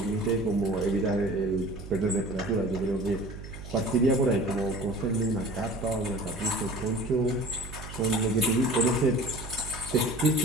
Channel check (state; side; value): noise; right; hum, 12 dB below the sound